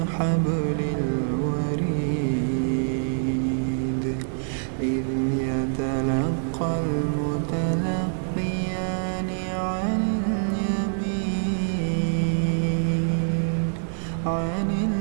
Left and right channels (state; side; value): silent; left; digital silence